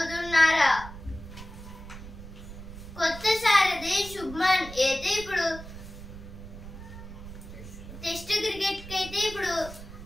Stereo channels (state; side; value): noise; right; rumble, 13 dB below the sound